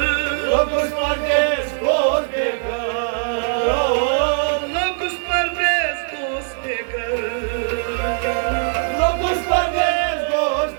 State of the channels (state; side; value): silent; left; digital silence